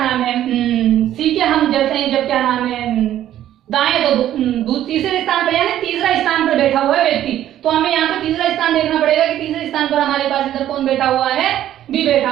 है, सी के हम जब क्या नाम है दाएं तो तीसरे स्थान पर यानी तीसरा स्थान पर बैठा हुआ है व्यक्ति, तो हमें यहाँ पे तीसरा स्थान देखना पड़ेगा कि तीसरे स्थान पर हमारे पास इधर कौन बैठा हुआ है, बी बैठा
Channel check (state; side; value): quieter; left; 12.1 dB